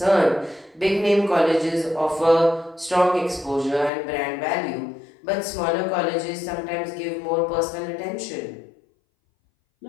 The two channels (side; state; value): right; drops out; at 3.9 s